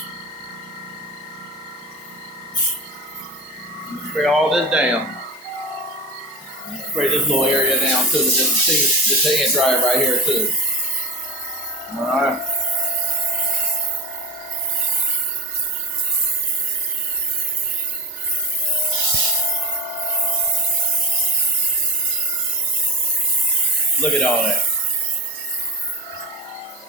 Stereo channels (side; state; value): both; normal; correlation 0.28